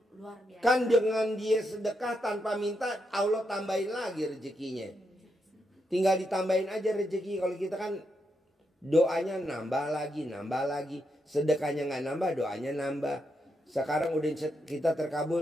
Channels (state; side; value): normal; both; correlation 0.82